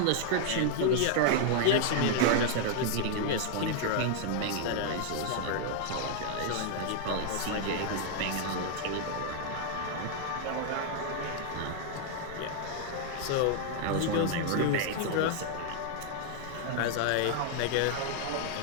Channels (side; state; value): both; different; correlation 0.00